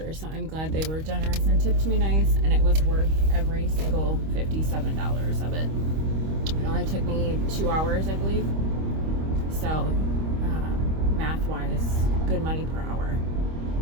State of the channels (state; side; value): late; left; 25 ms